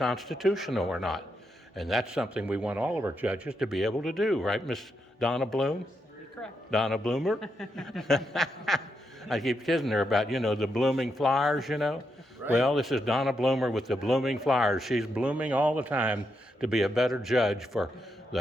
or not. And that's something we want all of our judges to be able to do, right, Miss Donna Bloom? You're correct. Donna Bloemer? I keep kidding her about, the blooming flowers, Right. Well, this is Donna Bloemer with the blooming flowers. She's blooming all the time to be a better judge for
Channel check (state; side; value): normal; both; correlation 0.82